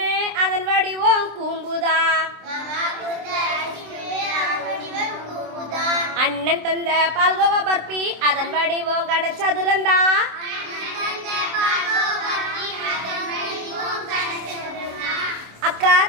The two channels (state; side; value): late; left; 27 ms